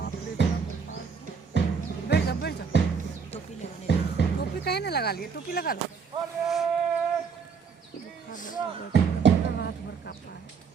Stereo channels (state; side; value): quieter; left; 5.8 dB